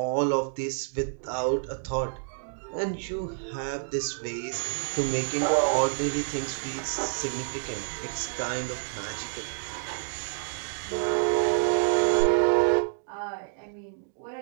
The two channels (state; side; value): silent; left; 59 dB below the other